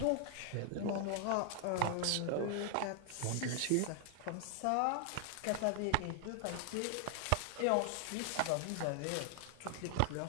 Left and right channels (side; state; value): both; different; correlation 0.00